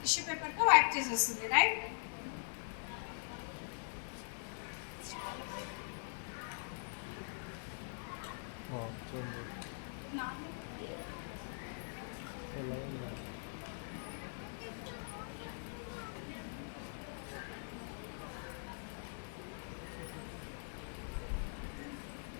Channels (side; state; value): right; silent; digital silence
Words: టిష్యూ పేపర్తో వైప్ చేసేస్తుంది. రైట్?